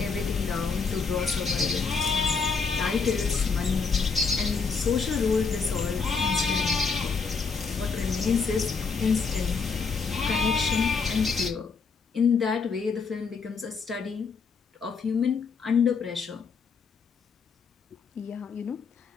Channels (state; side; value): quieter; right; 5.1 dB